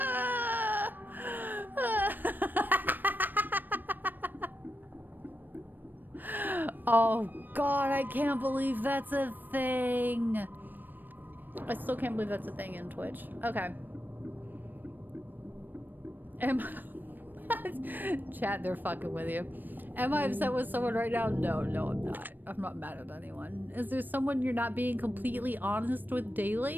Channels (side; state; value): left; late; 0.091 ms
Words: Oh, God, I can't believe that's a thing. I still can't believe that's a thing in Twitch. Okay. Chat, they're fucking with you. Am I upset with someone right now? No, I'm not. I'm not mad at anyone. Is there someone you're not being completely honest with